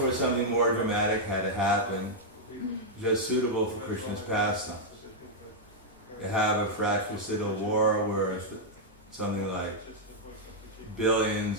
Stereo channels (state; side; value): normal; both; correlation -0.05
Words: something more dramatic had to happen, just suitable for Krishna's pastimes. To have a fratricidal war where something like